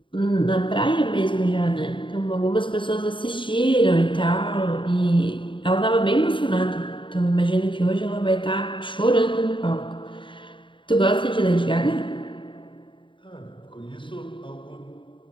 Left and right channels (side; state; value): right; late; 0.24 ms